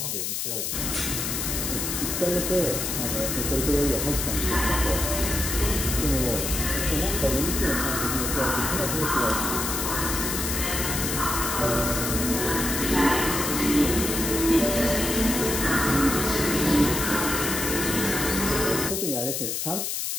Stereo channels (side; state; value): left; noise; hiss, 2 dB below the sound